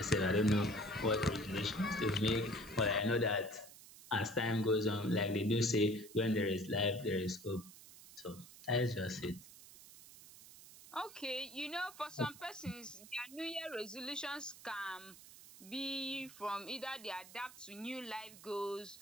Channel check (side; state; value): right; noise; hiss, 18 dB below the sound